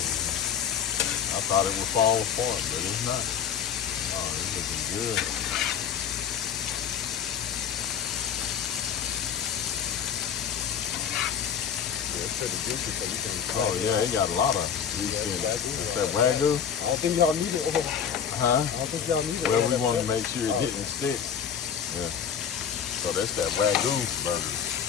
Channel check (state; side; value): quieter; right; 7.9 dB